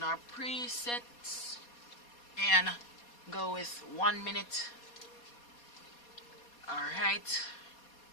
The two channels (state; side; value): late; right; 4.2 ms